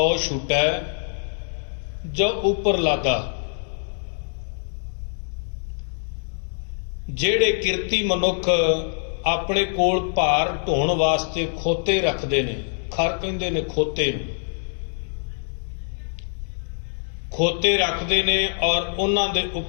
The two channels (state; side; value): silent; right; digital silence